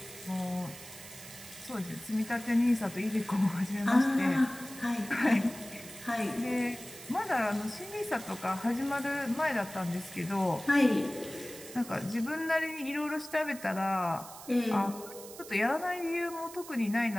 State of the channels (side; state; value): right; noise; hiss, 15 dB below the sound